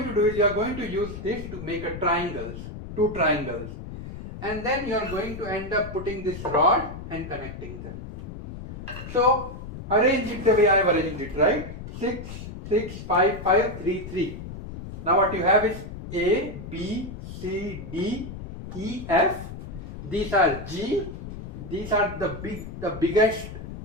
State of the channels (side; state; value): left; noise; rumble, 10 dB below the sound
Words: to do is you are going to use this to make a two triangles, and then you are going to end up putting this rod and connecting them. So arrange it the way I have arranged it, right? 6, 6, 5, 5, 3, 3. Now what you have is A, B, C, D, E, F. These are G. These are the biggest